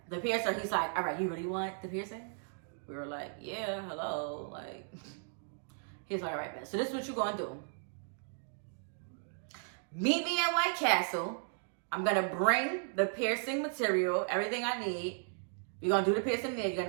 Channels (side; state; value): left; silent; digital silence